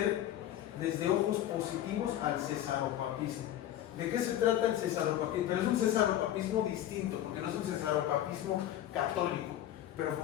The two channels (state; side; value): quieter; right; 12.3 dB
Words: desde ojos positivos al cesaropapismo. ¿De qué se trata el cesaropapismo? Pero es un cesaropapismo distinto, porque no es un cesaropapismo católico, pero